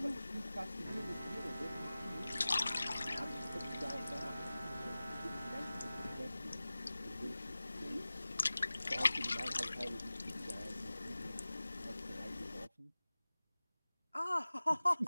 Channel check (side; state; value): both; inverted; correlation -0.97